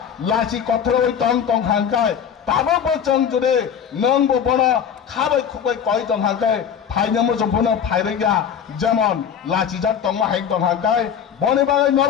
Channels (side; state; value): right; quieter; 8.1 dB